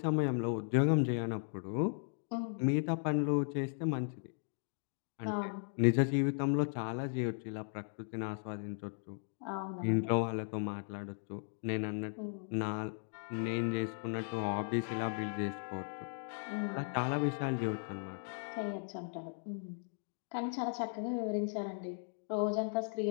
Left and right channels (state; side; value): silent; right; 53 dB below the other